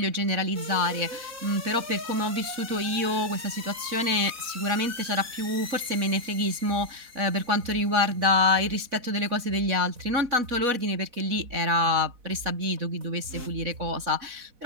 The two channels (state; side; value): late; left; 4.1 ms